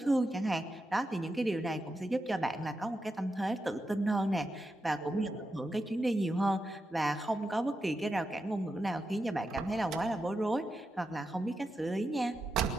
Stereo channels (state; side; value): normal; both; correlation 0.87